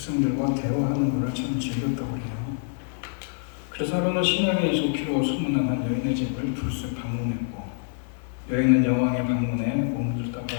대화하는 걸로 참 즐겼다고 해요. 그래서 그는 신앙에 좋기로 소문난 한 여인의 집을 불쑥 방문했고, 여인은 여왕의 방문에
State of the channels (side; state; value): right; silent; 61 dB below the other